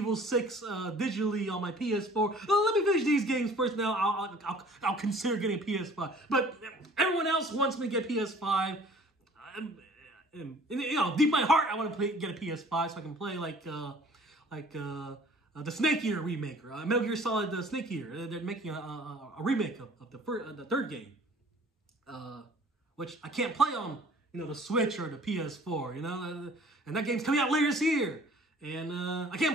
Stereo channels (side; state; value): both; normal; correlation 0.51